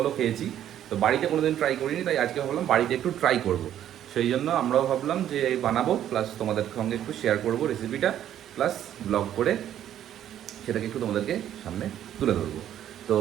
খেয়েছি। তো বাড়িতে কোনোদিন ট্রাই করিনি, তাই আজকে ভাবলাম বাড়িতে একটু ট্রাই করব। সেই জন্য আমরাও ভাবলাম যে বানাবো, প্লাস তোমাদের সঙ্গে একটু শেয়ার করব রেসিপিটা, প্লাস ব্লগ করে সেটাকে একটু তোমাদেরকে সামনে তুলে ধরবো। তো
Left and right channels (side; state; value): left; quieter; 11.0 dB